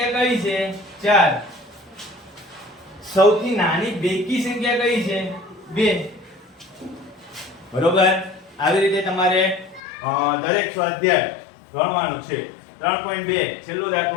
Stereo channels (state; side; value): drops out; right; at 9.8 s